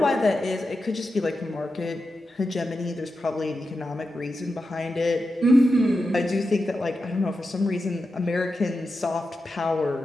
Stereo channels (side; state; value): both; normal; correlation 0.90